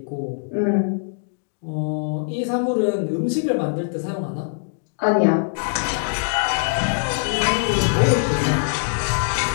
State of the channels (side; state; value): right; silent; digital silence